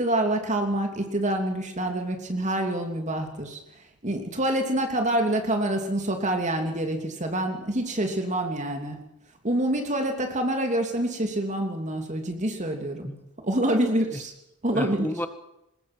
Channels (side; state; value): both; normal; correlation 0.44